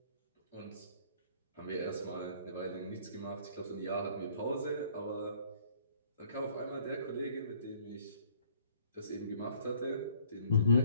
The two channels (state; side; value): inverted; both; correlation -0.60